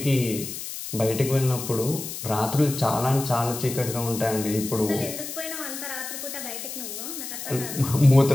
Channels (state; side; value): noise; left; hiss, 8 dB below the sound